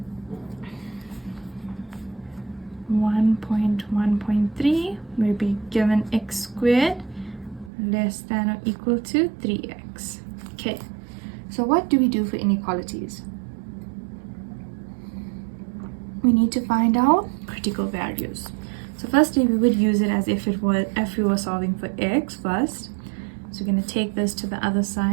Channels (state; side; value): drops out; left; at 7.7 s